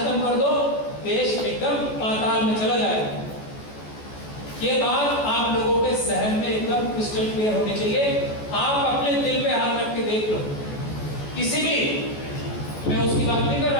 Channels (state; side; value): late; right; 14 ms